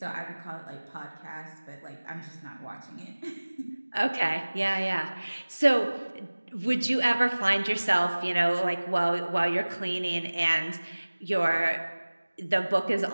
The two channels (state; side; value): inverted; both; correlation -1.00